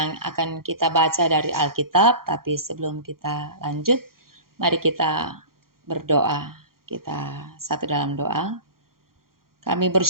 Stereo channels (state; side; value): late; left; 0.92 ms